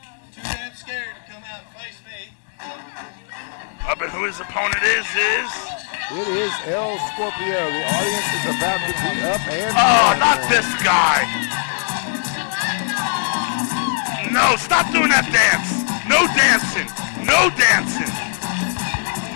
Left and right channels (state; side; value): silent; right; digital silence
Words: But who his opponent is? It is El Scorpio. The audience is about to be up and dancing. Not this guy. No, stop doing that dance. No dancing. No dancing.